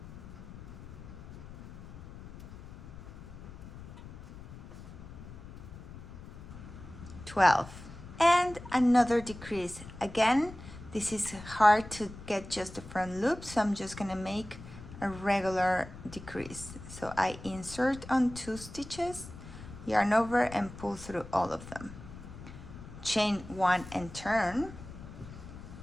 And another decrease. Again, this is hard to get just the front loop, so I'm just gonna make a regular decrease. So I insert on 2 stitches, yarn over and pull through all of them. Chain 1 and turn.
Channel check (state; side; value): noise; left; rumble, 14 dB below the sound